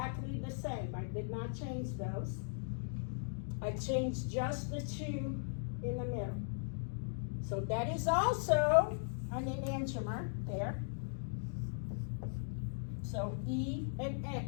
the same. I did not change those. I changed just the two in the middle. So that is also an enantiomer there. So E and A,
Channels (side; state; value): right; silent; digital silence